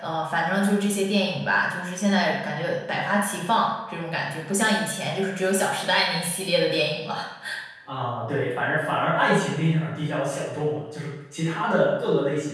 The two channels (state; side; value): identical; both; correlation 1.00